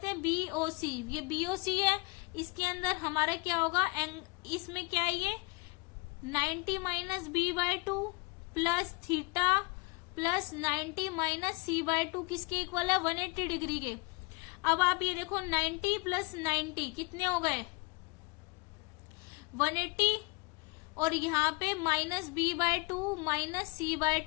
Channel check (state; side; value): quieter; right; 27.5 dB